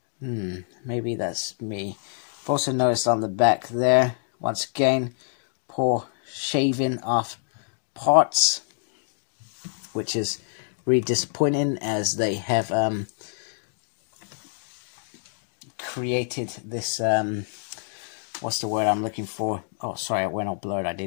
Maybe that's me. I've also noticed on the back there, once again, poor shaving off parts, which is really disappointing, as they have created this, what's the word I'm looking for? Oh, sorry, it went all blurred, I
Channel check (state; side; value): silent; right; digital silence